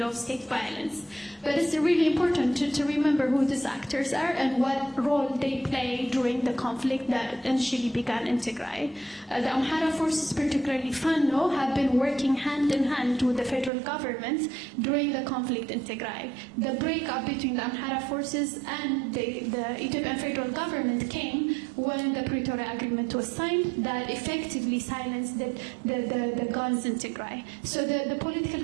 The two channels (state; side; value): drops out; left; at 13.7 s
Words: of state violence. But it's really important to remember who these actors are and what role they play during the conflict that initially began in Tigray. The Amhara forces, particularly Fano, have been working hand in hand with the federal government during the conflict in Tigray. The breakup between the Amhara forces and the Ethiopian federal government came when the Pretoria Agreement was signed that effectively silenced the guns in Tigray. So the political